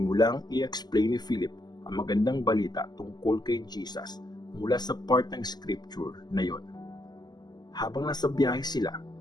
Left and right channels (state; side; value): late; right; 0.20 ms